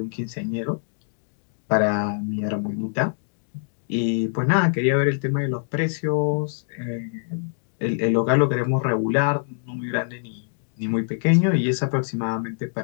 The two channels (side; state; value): right; silent; digital silence